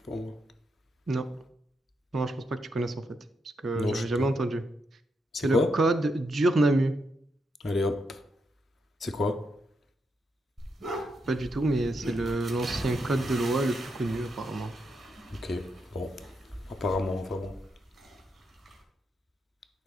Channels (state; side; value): normal; both; correlation 0.82